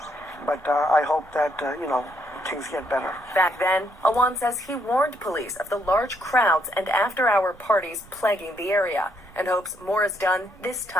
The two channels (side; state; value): right; noise; rumble, 26 dB below the sound